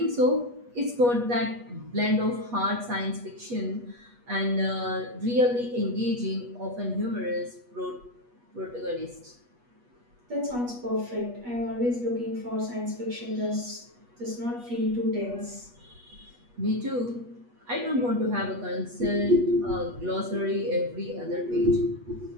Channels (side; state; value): left; late; 8.3 ms